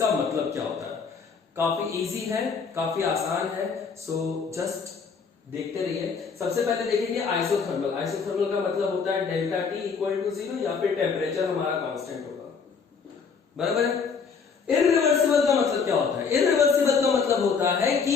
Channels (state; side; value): quieter; right; 5.6 dB